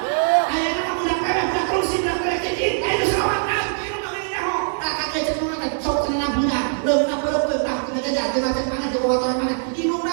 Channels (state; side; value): silent; left; digital silence